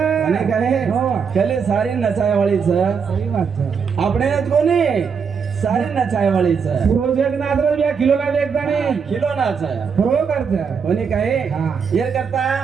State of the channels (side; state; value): left; quieter; 6.2 dB